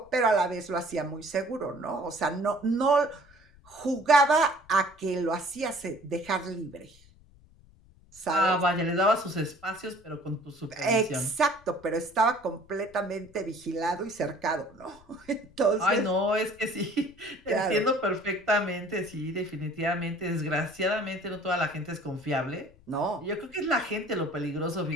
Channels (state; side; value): noise; left; rumble, 27 dB below the sound